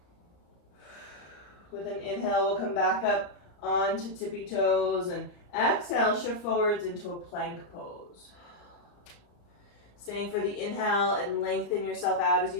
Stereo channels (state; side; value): late; right; 34 ms